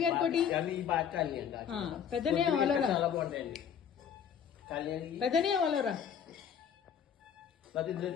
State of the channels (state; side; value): quieter; right; 8.1 dB